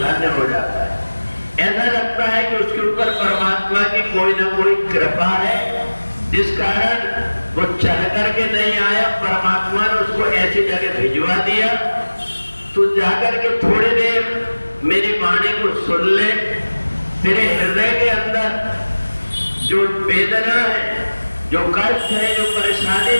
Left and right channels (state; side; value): inverted; both; correlation -1.00